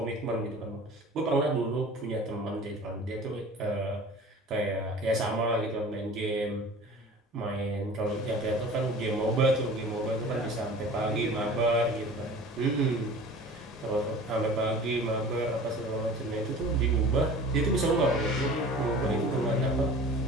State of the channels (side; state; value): both; normal; correlation 0.42